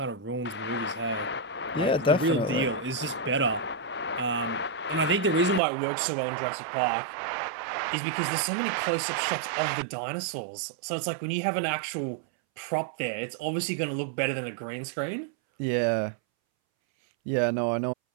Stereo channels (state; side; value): drops out; left; at 5.6 s